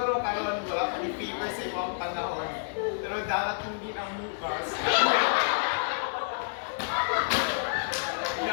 karon wala akong fever sa ibang panahon. Pero darating din ang bukas.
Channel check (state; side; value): silent; right; 58 dB below the other